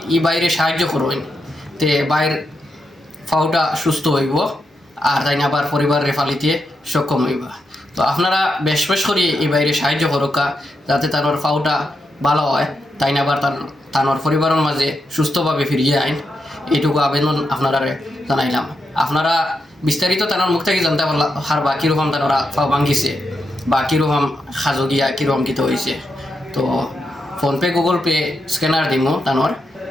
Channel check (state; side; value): normal; both; correlation 0.84